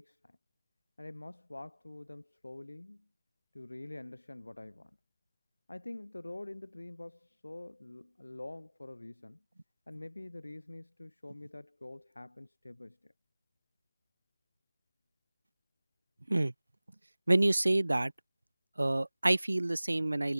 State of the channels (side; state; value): both; inverted; correlation -1.00